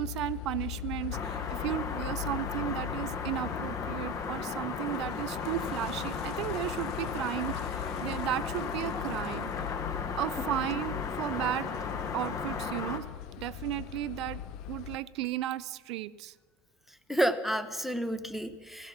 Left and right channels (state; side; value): normal; both; correlation 0.34